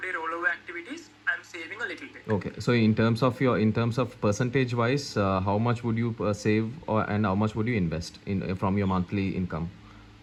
rollover activities I'm saving a little bit. Okay, so in terms of percentage wise, how much would you save and how much would you invest in from your monthly income?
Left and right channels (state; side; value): identical; both; correlation 1.00